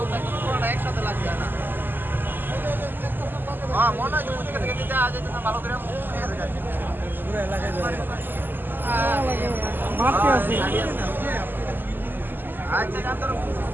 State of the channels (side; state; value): left; late; 0.092 ms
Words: একদম পুরোটা একসাথে লাগছে না। হ্যাঁ মনে হয় যে ওদিকে থেকে দিতে আজ যেতে ভালো করে পুরো এলাকায় আচ্ছা জানতো